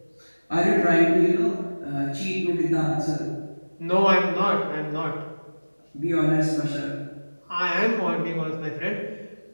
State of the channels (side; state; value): both; inverted; correlation -1.00